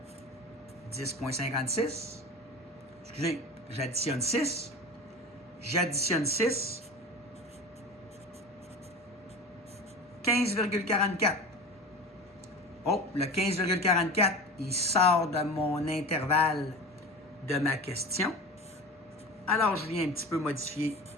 10,56. Excusez, j'additionne 6. J'additionne 6, 15,44. Oh, le 15,44, il sort de mon intervalle de ma question. Alors, je viens un petit peu modifier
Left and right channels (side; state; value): both; normal; correlation 0.33